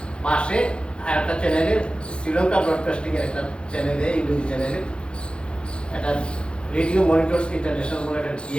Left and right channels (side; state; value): right; late; 0.055 ms